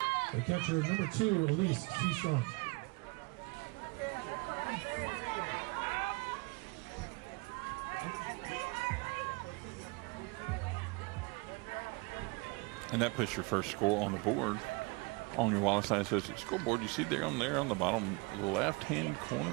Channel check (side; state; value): left; quieter; 27.6 dB